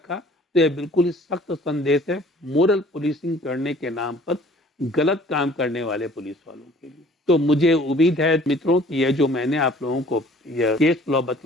तो यह बिल्कुल ही सख्त संदेश है मोरल पुलिसिंग करने के नाम पर गलत काम करने वाले पुलिस वालों के लिए। तो मुझे उम्मीद है मित्रों कि यह जो मैंने आप लोगों को यह केस लॉ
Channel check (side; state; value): both; normal; correlation 0.53